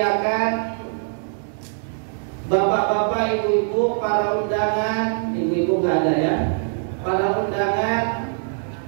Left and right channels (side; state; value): left; silent; 64 dB below the other